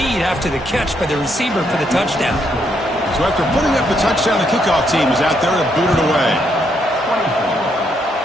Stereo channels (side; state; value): both; normal; correlation 0.75